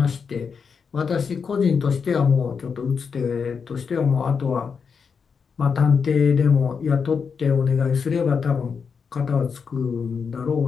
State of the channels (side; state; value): right; quieter; 5.9 dB